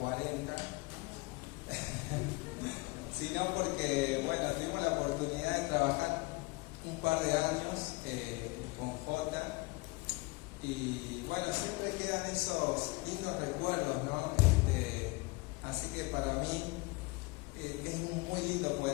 sino porque, bueno, tuvimos la oportunidad de trabajar un par de años con Jota. Y bueno, siempre quedan esos lindos recuerdos, ¿no? Así que para mí es muy lindo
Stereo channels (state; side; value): quieter; right; 25.2 dB